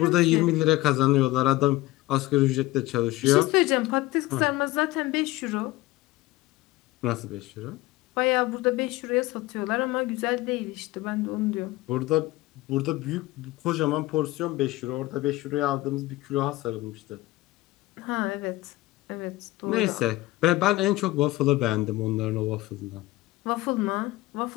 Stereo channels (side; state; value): right; quieter; 18.6 dB